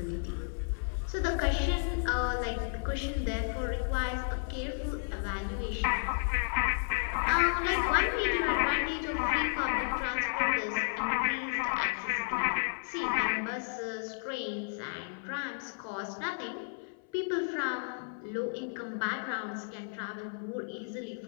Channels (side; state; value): right; silent; 56 dB below the other